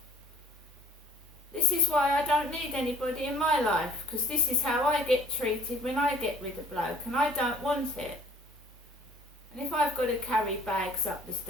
This is why I don't need anybody in my life, because this is how I get treated when I get with a bloke, and I don't want it. And if I've got to carry bags up the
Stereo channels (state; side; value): normal; both; correlation 0.53